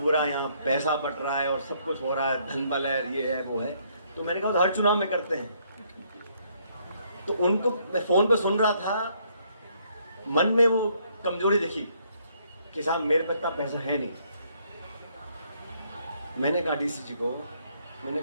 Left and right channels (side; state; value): both; inverted; correlation -0.69